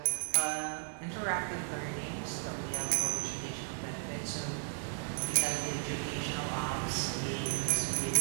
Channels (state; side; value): silent; left; 55 dB below the other